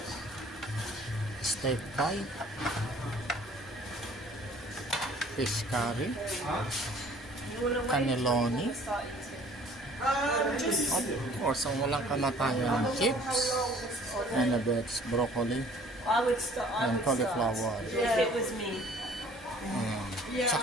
Steak pie. Fish curry. Cannelloni. Of course, ang walang kamatayan, chips, and a bit broccoli, and cauliflower. Yeah, it was me.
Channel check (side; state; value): both; normal; correlation 0.53